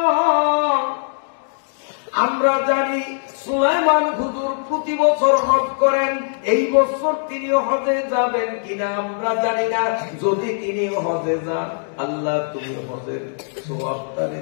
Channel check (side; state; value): right; silent; digital silence